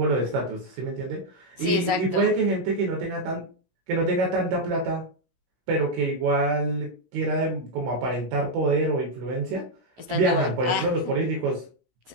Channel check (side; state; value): left; late; 16 ms